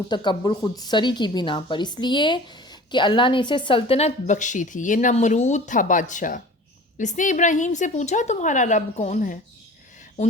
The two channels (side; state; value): both; normal; correlation 0.42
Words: تکبر خود سری کی بنا پر، اس لیے کہ اللہ نے اسے سلطنت بخشی تھی۔ یہ نمرود تھا بادشاہ۔ اس نے ابراہیم سے پوچھا تمہارا رب کون ہے؟